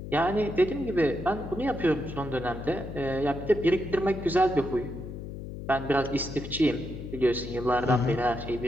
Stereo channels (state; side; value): noise; left; hum, 9 dB below the sound